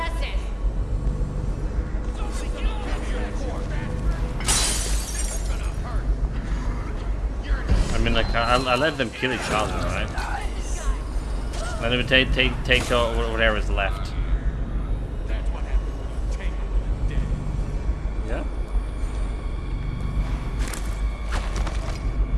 I mean, like I let them kill each other, right? Then we take whatever is left. That's what happened when you tangle with the dead. Yeah.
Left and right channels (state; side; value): identical; both; correlation 1.00